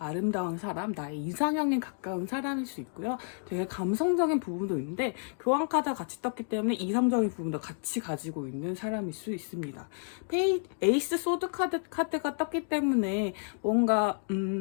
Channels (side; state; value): right; silent; 57 dB below the other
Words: 사람, 나의 이상형에 가까운 사람일 수 있고요. 되게 감성적인 부분도 있는데 교환 카드가 같이 떴기 때문에 이성적인 부분도 같이 가지고 있는 사람일 수 있습니다. 에이스 소드 카드가 떴기 때문에 뭔가